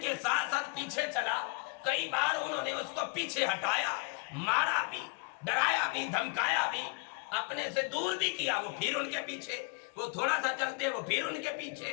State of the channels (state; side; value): quieter; right; 30.7 dB